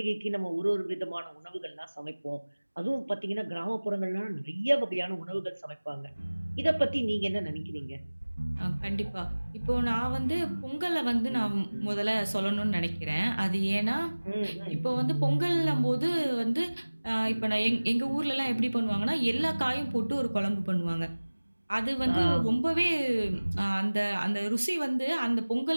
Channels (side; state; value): both; inverted; correlation -1.00